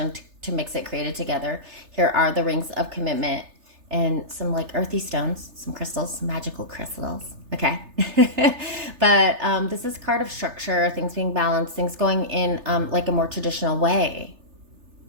to mix it, created together. Here are the rings of commitment and some like earthy stones, some crystals, some magical crystals. Okay. But this is a card of structure, things being balanced, things going in like a more traditional way.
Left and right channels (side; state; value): left; late; 3.3 ms